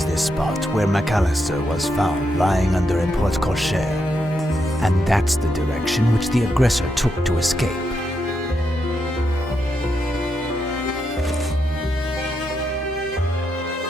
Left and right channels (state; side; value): normal; both; correlation 0.82